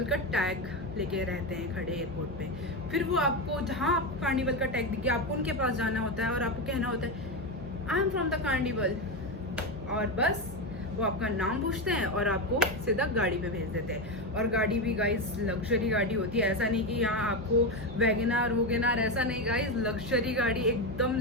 का टैग लेके रहते हैं खड़े एयरपोर्ट पे। फिर वो आपको, जहाँ आप कार्निवल का टैग दिखे, आपको उनके पास जाना होता है और आपको कहना होता है I am from the carnival, और बस वो आपका नाम पूछते हैं और आपको सीधा गाड़ी पे भेज देते हैं। और गाड़ी भी गाइस लग्जरी गाड़ी होती है, ऐसा नहीं कि यहाँ आपको वैगनार वोगेनार, ऐसा नहीं गाइस, लग्जरी गाड़ी, एकदम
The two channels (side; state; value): left; noise; hum, 18 dB below the sound